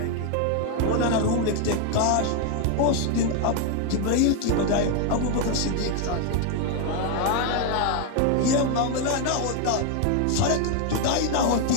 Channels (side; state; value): both; different; correlation 0.01